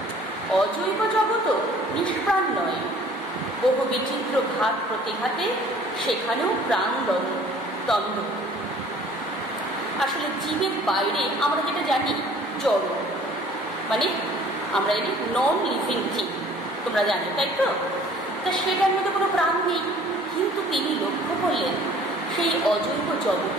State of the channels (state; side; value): normal; both; correlation 0.52